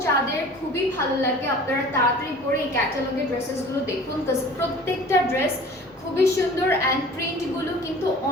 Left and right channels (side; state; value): both; normal; correlation 0.44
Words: যাদের খুবই ভালো লাগে আপনারা তাড়াতাড়ি করে এই ক্যাটালগের ড্রেসেসগুলো দেখুন, বিকজ প্রত্যেকটা ড্রেস খুবই সুন্দর অ্যান্ড প্রিন্টগুলো কিন্তু